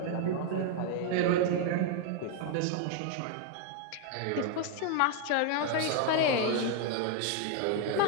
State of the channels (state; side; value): different; both; correlation 0.00